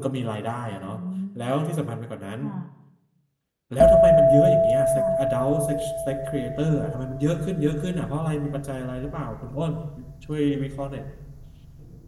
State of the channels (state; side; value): identical; both; correlation 1.00